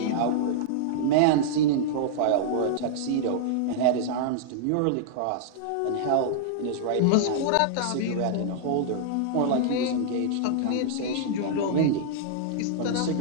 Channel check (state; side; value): different; both; correlation -0.01